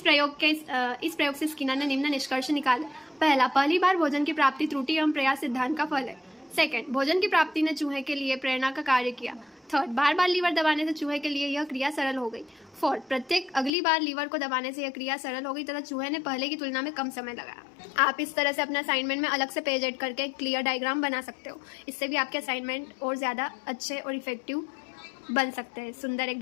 प्रयोग से स्किनर ने निम्न निष्कर्ष निकाले। पहला, पहली बार भोजन की प्राप्ति त्रुटि एवं प्रयास सिद्धांत का फल है। सेकंड, भोजन की प्राप्ति ने चूहे के लिए प्रेरणा का कार्य किया। थर्ड, बार बार लीवर दबाने से चूहे के लिए यह क्रिया सरल हो गई। फोर्थ, प्रत्येक अगली बार लीवर को दबाने से यह क्रिया सरल हो गई तथा चूहे ने पहले की तुलना में कम समय लगाया। आप इस तरह से अपने असाइनमेंट में अलग से पेज ऐड करके क्लियर डायग्राम बना सकते हो। इससे भी आपके असाइनमेंट और ज़्यादा अच्छे और इफेक्टिव बन सकते हैं, सुंदर,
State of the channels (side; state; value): right; drops out; at 13.7 s